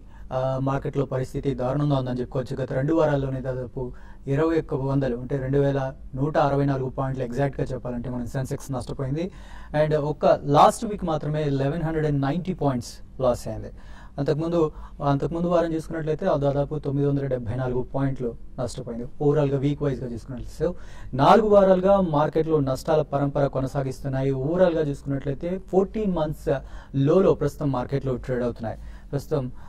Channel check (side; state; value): both; identical; correlation 1.00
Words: మార్కెట్లో పరిస్థితి దారుణంగా ఉందని చెప్పుకోవచ్చు. గత 2 వారాల్లోనే దాదాపు 2100 అంటే 2164 పాయింట్లు ఎగ్జాక్ట్గా చెప్పాలంటే మన సెన్సెక్స్ నష్టపోయింది. అండ్ ఒక్క లాస్ట్ వీక్ మాత్రమే 1190 పాయింట్స్ లాస్ అయింది. అంతకుముందు వారం చూసుకున్నట్లయితే దాదాపు 974 పాయింట్లు నష్టపోయింది ఓవరాల్గా వీక్ వైజ్గా చూసుకున్నట్లయితే. సో 4 వారాలుగా మార్కెట్లో నష్టాల పరంపర కొనసాగిస్తున్నాయి. ఓవరాల్గా చూసుకున్నట్లయితే 14 months లోలో ప్రస్తుతం మార్కెట్లో ట్రేడ్ అవుతున్నాయి. ప్రస్తుతం